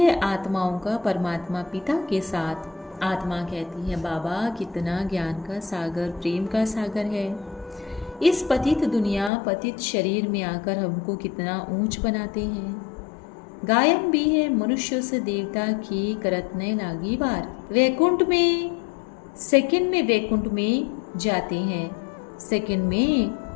आत्माओं का परमात्मा पिता के साथ। आत्मा कहती है बाबा कितना ज्ञान का सागर, प्रेम का सागर है। इस पतित दुनिया, पतित शरीर में आकर हमको कितना ऊंच बनाते हैं। गायन भी है मनुष्य से देवता की करत न लागी बार। वैकुंठ में सेकंड में वैकुंठ में जाते हैं, सेकंड में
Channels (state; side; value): drops out; right; at 9.3 s